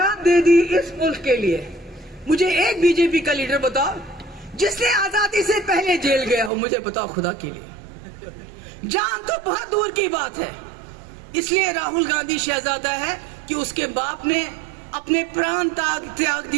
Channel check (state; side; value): drops out; left; at 6.5 s